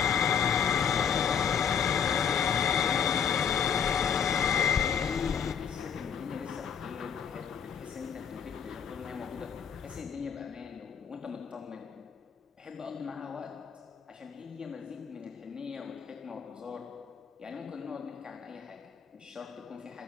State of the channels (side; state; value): right; quieter; 7.5 dB